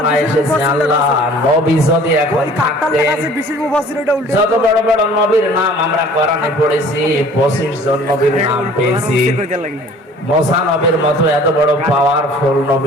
এসেছে, আল্লাহ নবী যদি এখন থাকতেন, যত বড় বড় নবীর নাম আমরা কোরআনে পড়েছি, 25 জন নবীর নাম পেয়েছি, মুসা নবীর মতো এত বড় পাওয়ারফুল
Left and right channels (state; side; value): normal; both; correlation 0.50